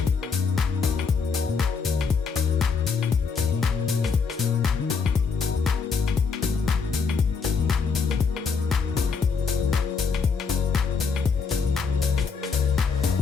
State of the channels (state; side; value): quieter; right; 5.3 dB